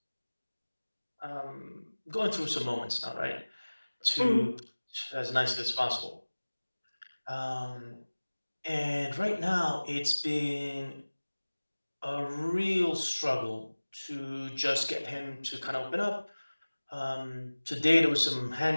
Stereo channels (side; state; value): both; inverted; correlation -1.00